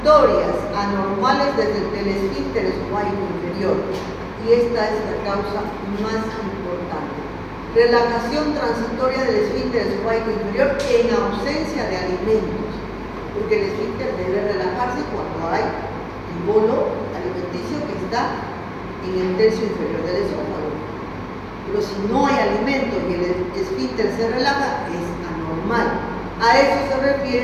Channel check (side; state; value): both; identical; correlation 1.00